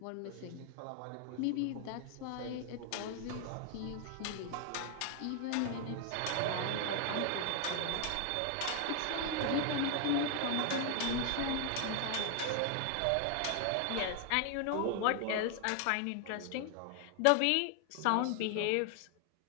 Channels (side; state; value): both; different; correlation 0.00